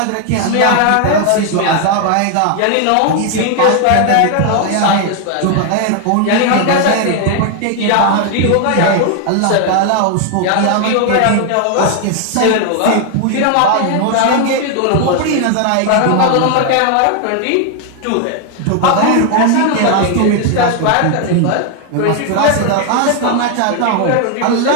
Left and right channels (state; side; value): different; both; correlation 0.01